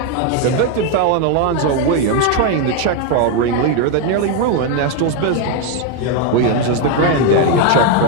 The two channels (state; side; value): different; both; correlation 0.01